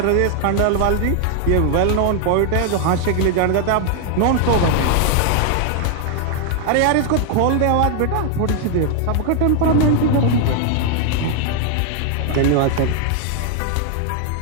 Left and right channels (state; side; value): different; both; correlation 0.00